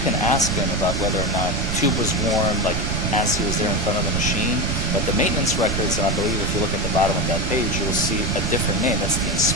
can ask him about whether or not tube was warm, like as he was there in front of the machine, but the maintenance records, and I believe if you look at the bottom of that page, you'll see a different name. That's the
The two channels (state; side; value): noise; right; rumble, 2 dB below the sound